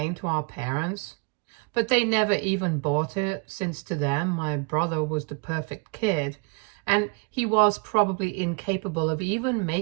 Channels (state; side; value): quieter; left; 31.4 dB